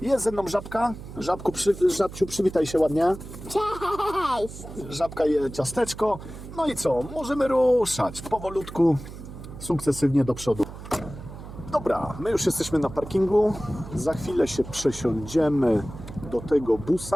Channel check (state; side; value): noise; right; hum, 13 dB below the sound